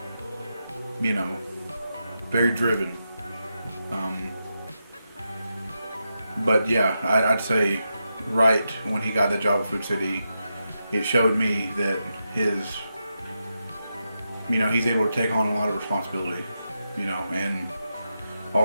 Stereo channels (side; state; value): both; inverted; correlation -0.87